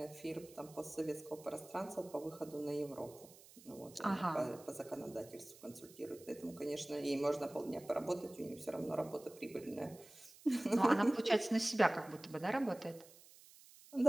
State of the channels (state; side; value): noise; right; hiss, 21 dB below the sound